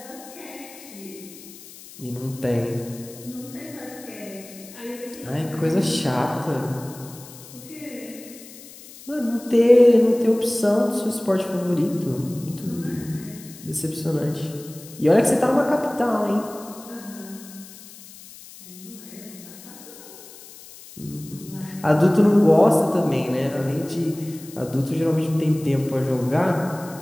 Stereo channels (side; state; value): left; noise; hiss, 18 dB below the sound